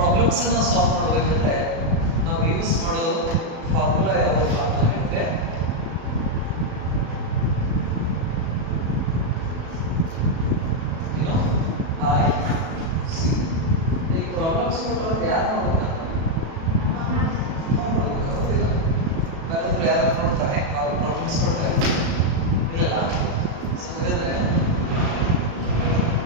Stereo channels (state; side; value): late; left; 36 ms